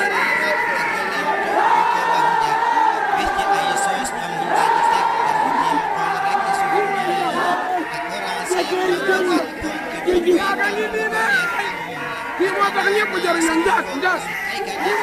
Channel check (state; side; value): identical; both; correlation 1.00